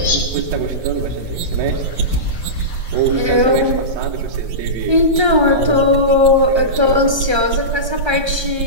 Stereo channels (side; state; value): left; late; 1.3 ms